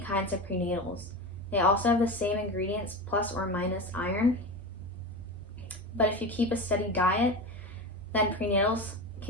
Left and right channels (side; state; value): both; normal; correlation 0.25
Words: kinds of prenatals. They also have the same ingredients plus or minus iron. But if you keep a steady diet, then prenatals